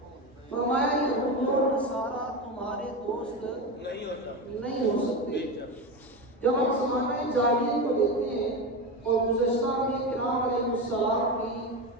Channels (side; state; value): both; normal; correlation 0.19